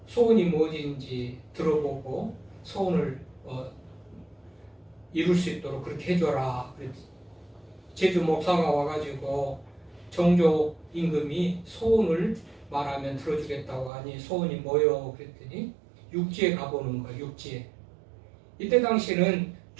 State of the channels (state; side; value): drops out; left; at 13.9 s